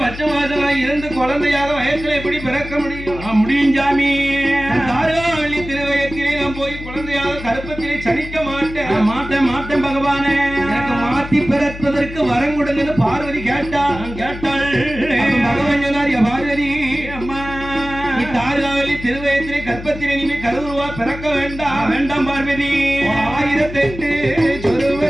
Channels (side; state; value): left; noise; hum, 12 dB below the sound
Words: பச்சை மாசம் இருந்து குழந்தையாக வயசுல எப்படி பிறக்க முடியும்? முடியும் சாமி. தாரகா வெள்ளி திருவயத்திலே நான் போய் குழந்தையாக கருப்பத்திலே சனிக்க மாட்டேன். மாட்டேன் பகவானே. எனக்கு மாத்தி பிறப்பதற்கு வரம் கொடுங்கன்னு பார்வதி கேட்டாள். பகவான் சொன்னார், பார்வதி அம்மா நீ தாரகா வெள்ளி திருவயத்திலே கற்பத்திலே நீ கருவுருவா பிறக்க வேண்டாம் பார்வதி. 1008